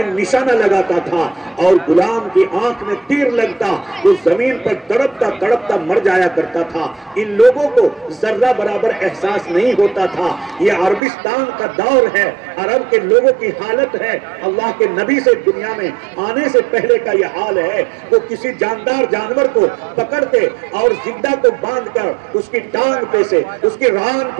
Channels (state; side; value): drops out; left; at 11.0 s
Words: نشانہ لگاتا تھا اور غلام کی آنکھ میں تیر لگتا، وہ زمین پر تڑپتا تڑپتا مر جایا کرتا تھا۔ ان لوگوں کو ذرہ برابر احساس نہیں ہوتا تھا۔ یہ عربستان فراغ کا دور ہے، عرب کے لوگوں کی حالت ہے، اللہ کے نبی سے دنیا میں آنے سے پہلے کا یہ حال ہے، وہ کسی جاندار جانور کو پکڑتے اور زندہ کو باندھ کر اس کی ٹانگ پہ سے، اس کی ران